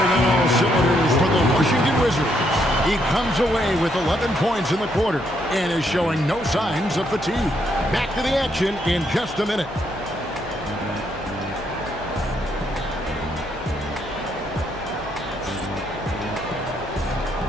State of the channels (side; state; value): left; noise; hum, 18 dB below the sound